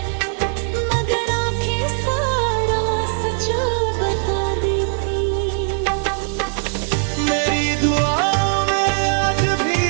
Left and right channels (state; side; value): silent; left; digital silence